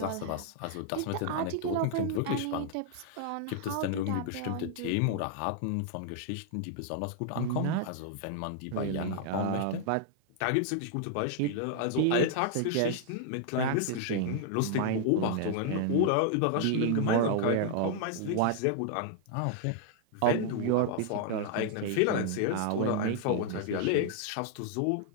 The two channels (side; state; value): both; different; correlation 0.00